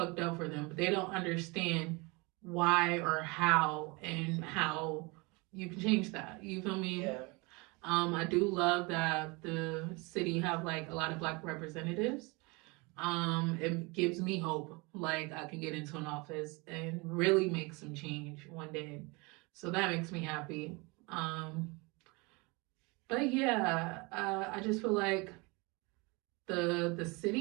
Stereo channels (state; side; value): quieter; left; 27.2 dB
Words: up for them, but they don't understand why or how and how you can change that. You feel me? Yeah. I do love that the city have like a lot of black representatives. It gives me hope, like I can get into an office and really make some change one day. So that makes me happy. But yeah, I just feel like the